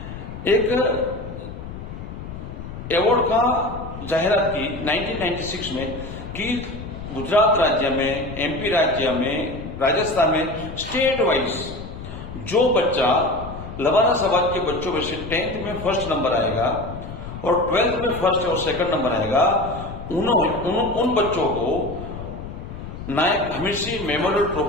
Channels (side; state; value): left; noise; rumble, 10 dB below the sound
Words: एक अवार्ड का जाहिरात की 1996 में कि गुजरात राज्य में, एमपी राज्य में, राजस्थान में स्टेट वाइज जो बच्चा लबाना समाज के बच्चों में से 10th में फर्स्ट नंबर आएगा और 12th में फर्स्ट और सेकंड नंबर आएगा, उन बच्चों को नायक हमीर सिंह मेमोरियल